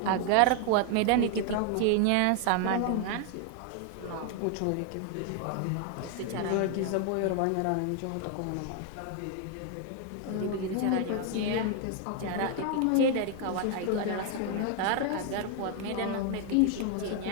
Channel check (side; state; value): both; different; correlation 0.00